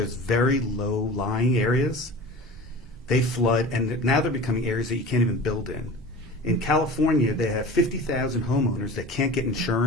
very low lying areas, they flood, and now they're becoming areas that you can't even build in. In California, they have 50,000 homeowners that can't get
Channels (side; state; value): both; normal; correlation 0.36